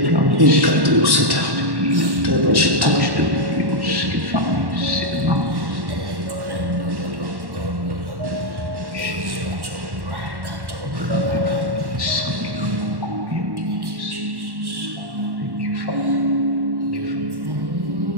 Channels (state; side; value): late; left; 1.1 ms